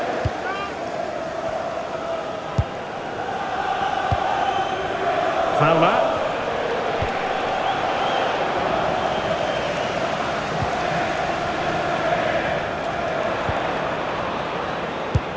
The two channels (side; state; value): both; identical; correlation 1.00